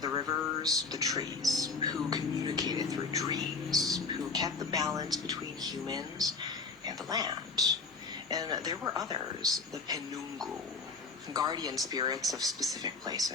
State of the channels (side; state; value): right; quieter; 4.3 dB